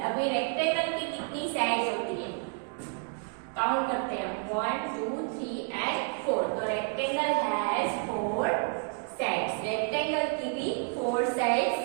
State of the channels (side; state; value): left; quieter; 39.4 dB